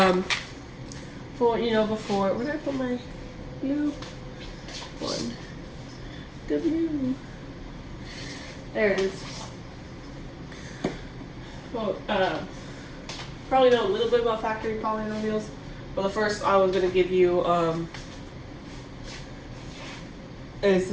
for before, where did I put my U? One W. There it is. Well, probably know a little bit about factoring polynomials, but the first I was going to give you is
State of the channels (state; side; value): identical; both; correlation 1.00